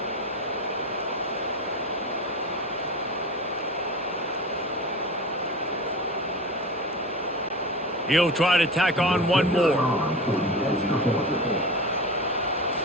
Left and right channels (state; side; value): normal; both; correlation 0.30